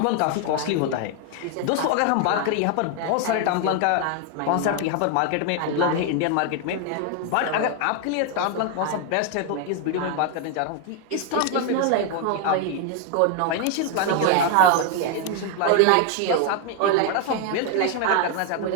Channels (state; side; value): different; both; correlation 0.01